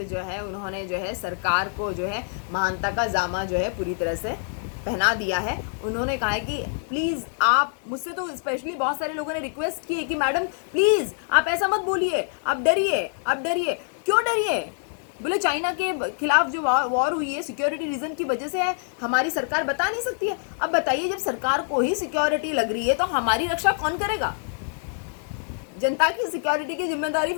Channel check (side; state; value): right; silent; 59 dB below the other